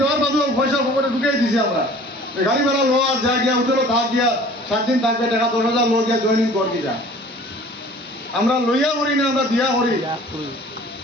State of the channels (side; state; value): both; normal; correlation 0.48